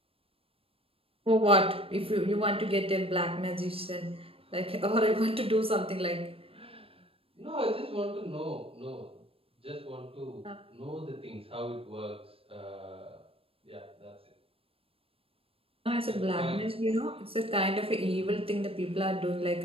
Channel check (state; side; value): late; left; 0.27 ms